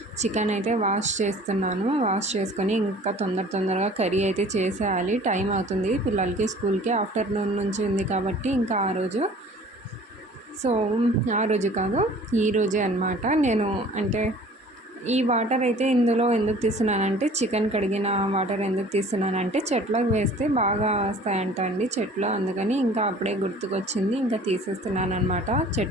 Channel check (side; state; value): both; normal; correlation 0.48